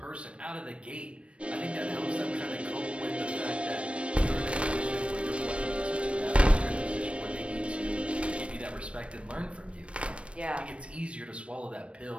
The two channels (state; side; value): late; left; 0.060 ms